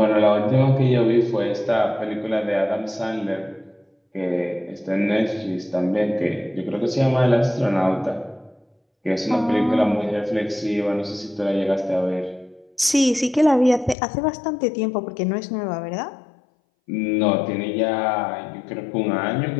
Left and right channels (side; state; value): right; drops out; at 14.0 s